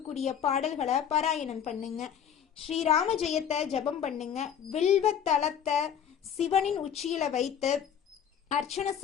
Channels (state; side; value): quieter; right; 8.6 dB